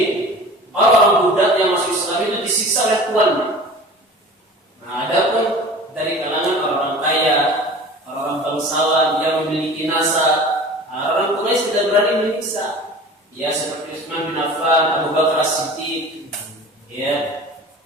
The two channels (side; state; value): both; normal; correlation 0.41